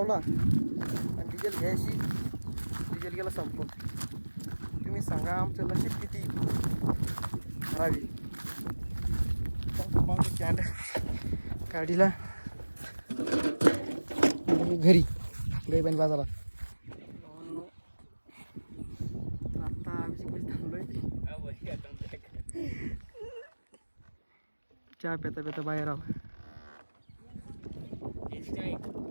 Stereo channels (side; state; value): both; inverted; correlation -1.00